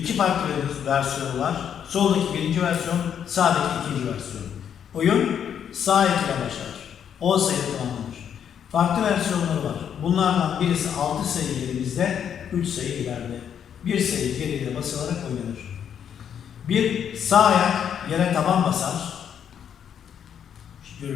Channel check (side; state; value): right; quieter; 8.6 dB